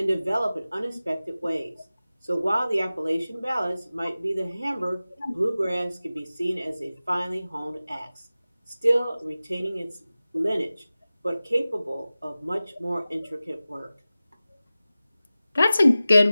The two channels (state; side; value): inverted; both; correlation -0.96